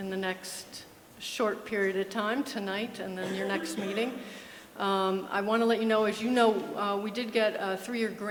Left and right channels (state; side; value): identical; both; correlation 1.00